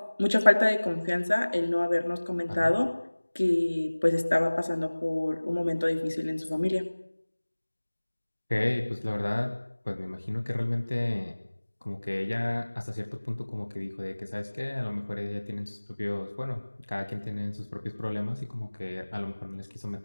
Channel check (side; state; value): both; inverted; correlation -1.00